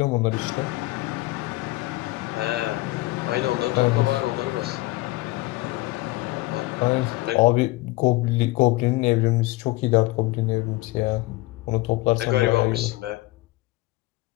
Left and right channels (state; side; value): quieter; right; 20.0 dB